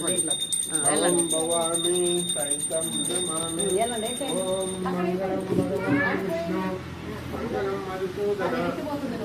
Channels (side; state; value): both; identical; correlation 1.00